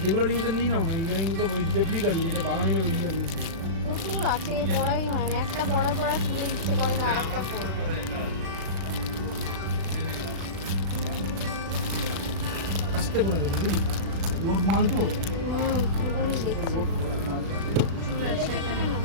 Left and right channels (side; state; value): left; late; 36 ms